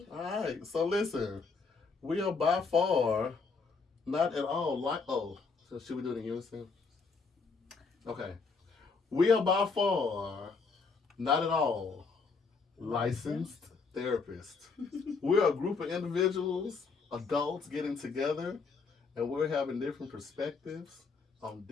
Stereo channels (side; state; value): right; quieter; 4.7 dB